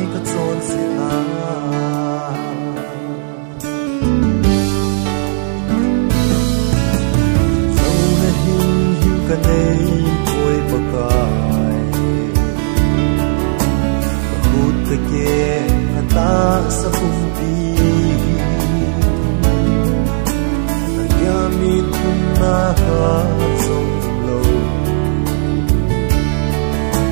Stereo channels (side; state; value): left; silent; digital silence